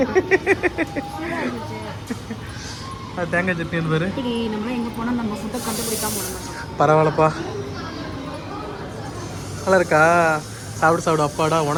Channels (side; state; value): both; identical; correlation 1.00